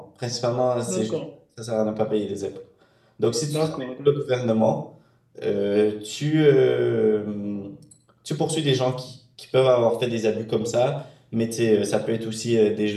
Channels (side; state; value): both; identical; correlation 1.00